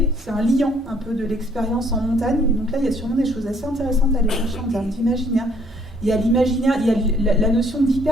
c'est un liant un peu de l'expérience en montagne. Et donc là, il y a sûrement des choses assez intéressantes à aller chercher en termes d'imaginaire. Il y a l'imaginaire, il y a la notion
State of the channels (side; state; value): both; normal; correlation 0.63